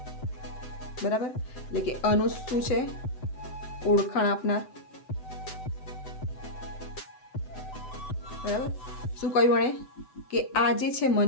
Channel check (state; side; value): late; right; 7.9 ms